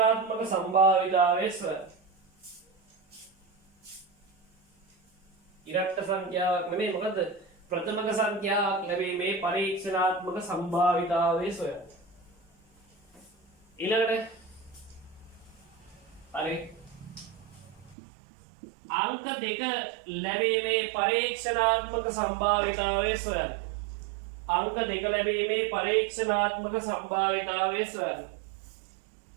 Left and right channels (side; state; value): left; drops out; at 17.9 s